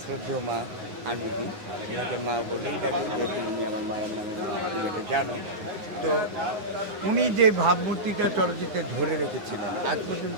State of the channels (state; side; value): late; left; 9.6 ms